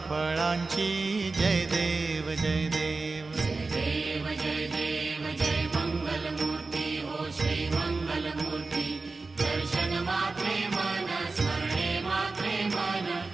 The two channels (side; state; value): left; quieter; 3.7 dB